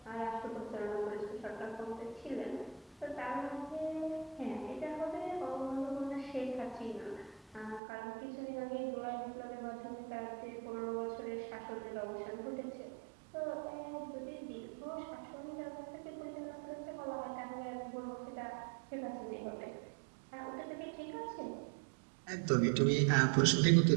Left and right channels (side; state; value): left; drops out; at 7.8 s